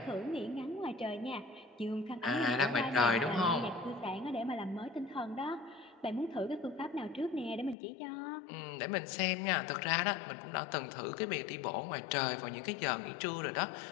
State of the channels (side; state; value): right; drops out; at 7.8 s